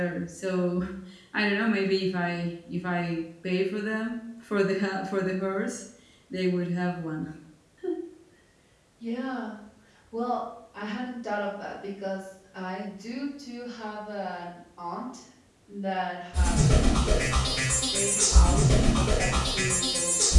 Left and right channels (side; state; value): both; identical; correlation 1.00